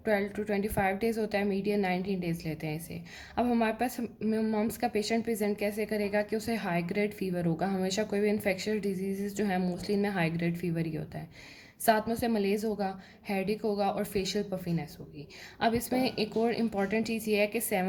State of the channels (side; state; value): both; identical; correlation 1.00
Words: 12 to 25 डेज़ होता है, मीडियन 19 डेज़ लेते हैं इसे। अब हमारे पास मम्स का पेशेंट प्रेजेंट कैसे करेगा कि उसे हाई ग्रेड फीवर होगा। हमेशा कोई भी इन्फेक्शियस डिजीज़ जो है मोस्टली इनमें हाई ग्रेड फीवर ही होता है। साथ में उसे मलेज होगा, हेडेक होगा और फेशियल पफिनेस होगी। अब इसमें एक और इम्पॉर्टेंट चीज़ ये है कि